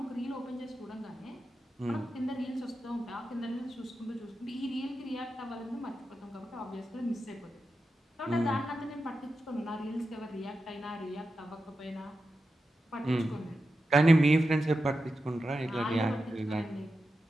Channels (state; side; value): normal; both; correlation 0.90